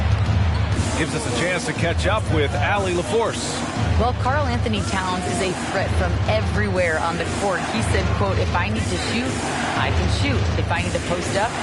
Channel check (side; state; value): both; identical; correlation 1.00